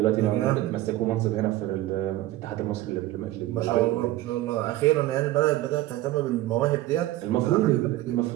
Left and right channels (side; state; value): left; quieter; 16.0 dB